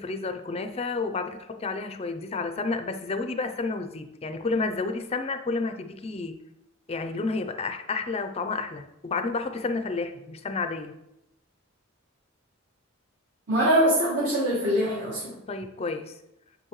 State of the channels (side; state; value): both; normal; correlation 0.17